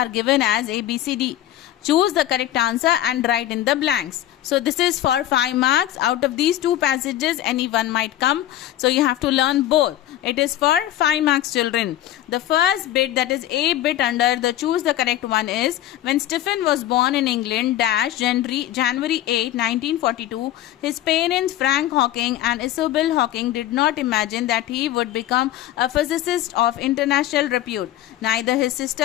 given as A, B, C, D. Choose the correct answer and write in the blanks. So this is for 5 marks. Out of these two passages, any one might come. So you have to learn both. It is for 5 marks, children. The first bit, that is A bit under the choose the correct one, is when Stephen was born in England, January 8, 1942, his parents Frank Hawking and Isobel Hawking did not imagine that he would become a physicist of international repute. Neither his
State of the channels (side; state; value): right; quieter; 13.1 dB